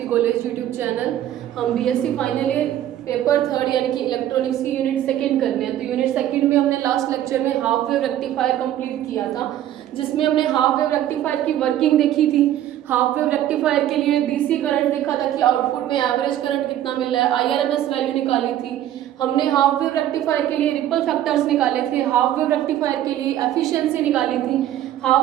college YouTube channel. हम BSc final year paper third यानी कि इलेक्ट्रॉनिक्स की यूनिट सेकंड करने हैं। तो यूनिट सेकंड में हमने लास्ट लेक्चर में हाफ वेव रेक्टिफायर कंप्लीट किया था, जिसमें हमने हाफ वेव रेक्टिफायर की वर्किंग देखी थी। हाफ वेव रेक्टिफायर के लिए डीसी करंट देखा था कि आउटपुट में एवरेज करंट कितना मिल रहा है, आईआरएमएस वैल्यू निकाली थी। हमने हाफ वेव रेक्टिफायर के लिए रिपल फैक्टर्स निकाले थे, हाफ वेव रेक्टिफायर के लिए एफिशिएंसी निकाली थी,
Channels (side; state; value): left; quieter; 12.1 dB